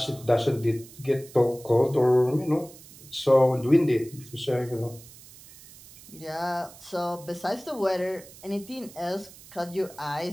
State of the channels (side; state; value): right; noise; hiss, 20 dB below the sound